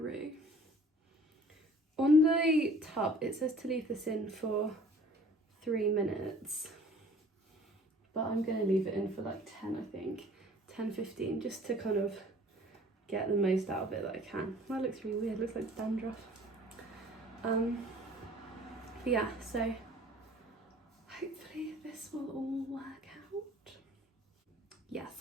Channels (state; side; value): normal; both; correlation 0.51